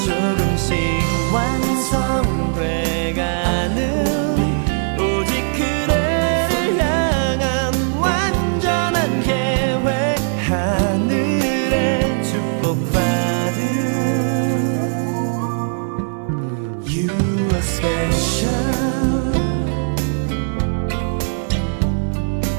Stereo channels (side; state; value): left; silent; 64 dB below the other